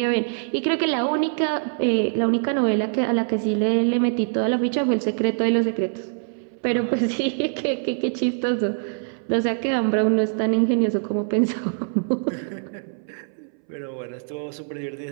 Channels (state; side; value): silent; left; 63 dB below the other